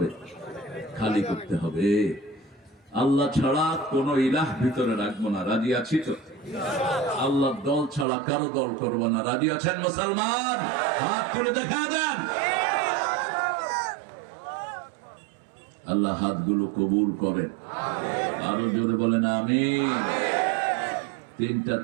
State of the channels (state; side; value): drops out; left; at 8.1 s